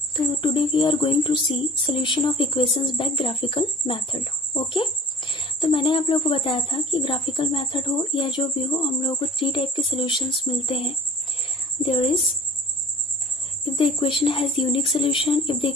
तो today we are going to see solution of equations by graphical method. Okay? तो मैंने आप लोगों को बताया था कि ग्राफिकल मेथड हो या जो भी हो, हम लोगों को 3 टाइप के सॉल्यूशंस मिलते हैं. There is if the equation has unique solution, if the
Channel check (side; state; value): both; normal; correlation 0.44